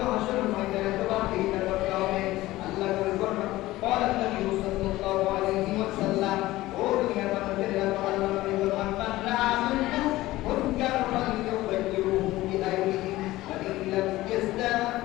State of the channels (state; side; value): quieter; right; 17.3 dB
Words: হাসরের ময়দানে জবাবদিহিতা করতে হবে। আল্লাহ বলেন قال النبي صلى الله عليه وسلم ও দুনিয়ার মানুষের আল্লাহ নবী বলেন মান রাআ মিনকুম মুনকার ফালইউগাইয়িরহু বিয়াদিহি ওয়া ইন লাম